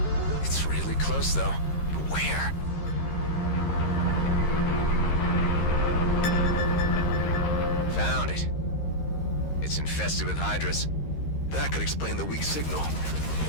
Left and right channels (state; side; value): late; right; 13 ms